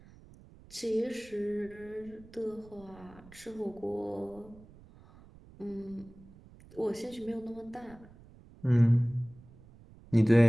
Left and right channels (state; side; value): noise; right; rumble, 22 dB below the sound